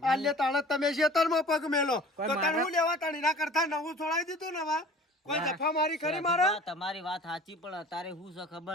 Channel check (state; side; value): normal; both; correlation 0.45